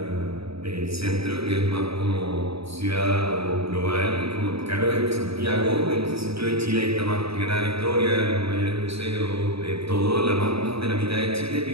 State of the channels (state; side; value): late; left; 0.77 ms